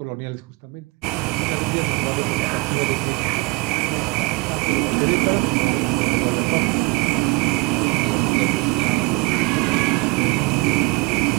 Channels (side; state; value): left; quieter; 25.6 dB